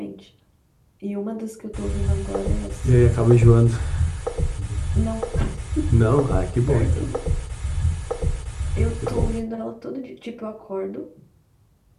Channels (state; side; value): identical; both; correlation 1.00